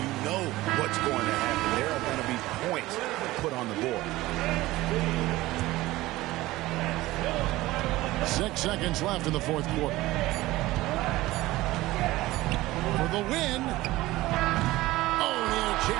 know what's going to happen. There are going to be points put on the board. 6 seconds left in the fourth quarter. For the win. Oh, he had a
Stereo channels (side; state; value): left; quieter; 18.1 dB